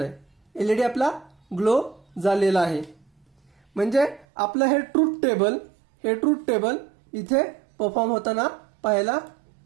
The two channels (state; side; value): drops out; left; at 4.2 s